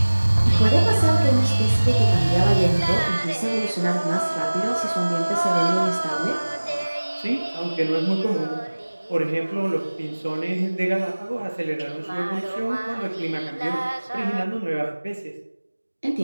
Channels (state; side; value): inverted; both; correlation -1.00